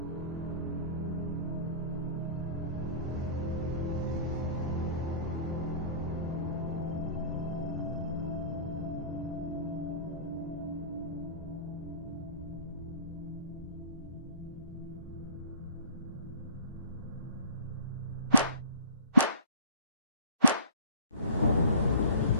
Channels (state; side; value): inverted; both; correlation -0.45